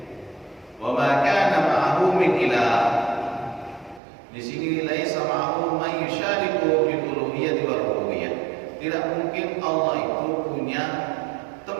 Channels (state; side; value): drops out; left; at 4.0 s